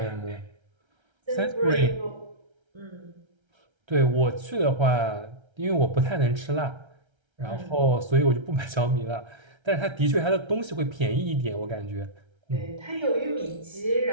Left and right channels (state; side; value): late; left; 1.3 ms